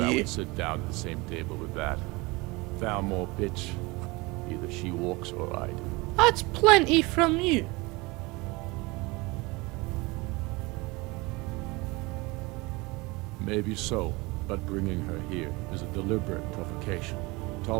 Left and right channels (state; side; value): quieter; left; 24.1 dB